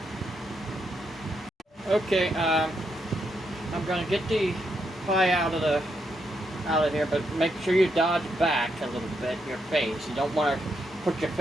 Okay, I'm gonna get the pie out of here, but make sure you dodge back a little bit, your face. You don't want to put your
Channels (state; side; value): normal; both; correlation 0.80